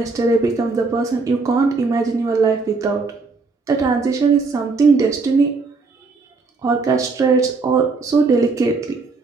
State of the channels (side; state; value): left; quieter; 4.1 dB